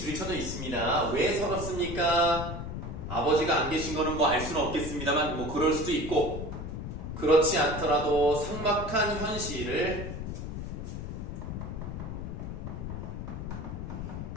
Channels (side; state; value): left; noise; rumble, 6 dB below the sound